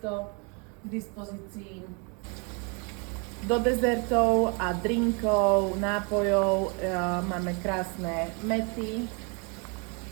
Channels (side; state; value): left; quieter; 33.7 dB